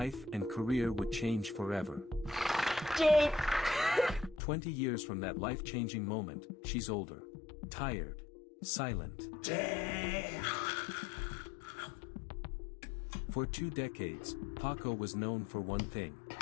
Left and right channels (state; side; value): drops out; right; at 4.4 s